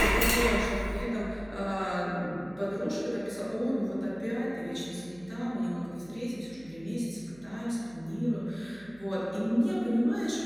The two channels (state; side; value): noise; right; hum, 23 dB below the sound